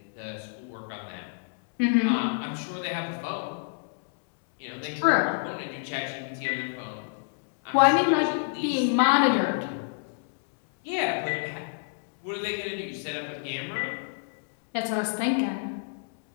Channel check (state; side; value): silent; right; digital silence